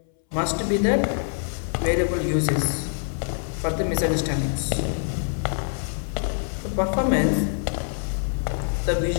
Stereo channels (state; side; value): silent; right; 62 dB below the other